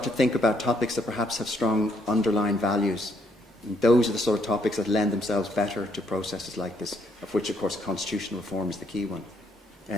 to think about topics that perhaps have strong underlying values. And those are the sort of topics that lend themselves better to processes like this, of which, of course, constitutional reform is the key one.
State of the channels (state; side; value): normal; both; correlation 0.71